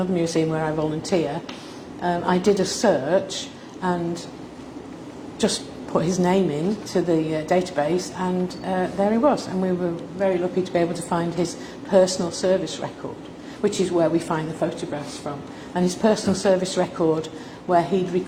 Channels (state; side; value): identical; both; correlation 1.00